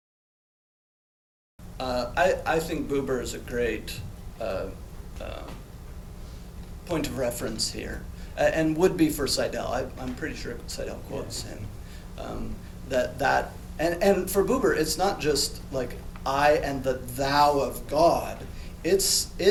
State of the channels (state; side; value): identical; both; correlation 1.00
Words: I think Buber is a great point of reference here, and would be for Seidel. I'm pretty sure Seidel quotes him. And for Buber, it's not just like I and the thou of God.